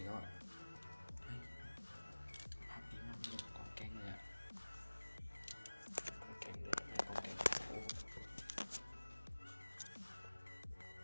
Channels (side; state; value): both; inverted; correlation -1.00